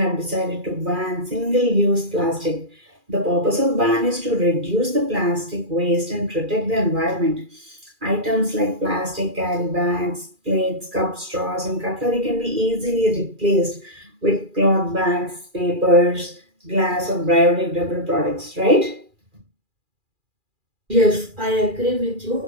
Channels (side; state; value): left; late; 2.4 ms